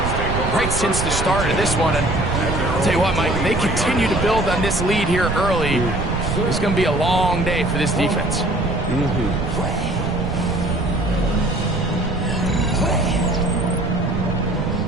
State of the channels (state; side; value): noise; right; rumble, 3 dB below the sound